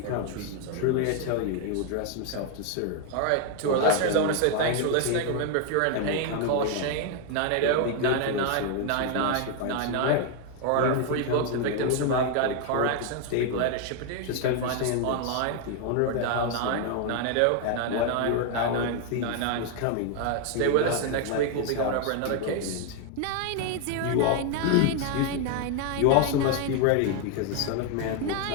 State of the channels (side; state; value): both; different; correlation 0.01